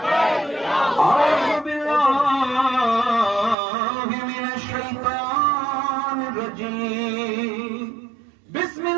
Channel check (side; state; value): left; drops out; at 3.6 s